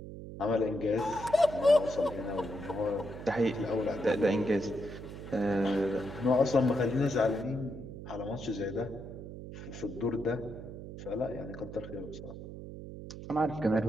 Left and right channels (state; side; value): noise; right; hum, 11 dB below the sound